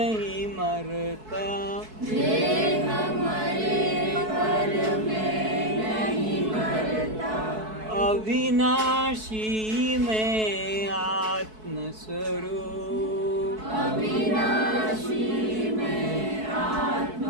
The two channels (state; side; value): late; left; 4.6 ms